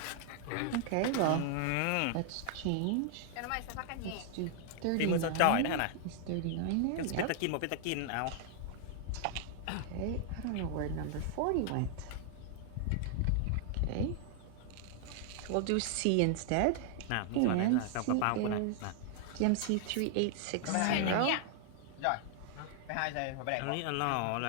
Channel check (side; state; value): both; different; correlation 0.00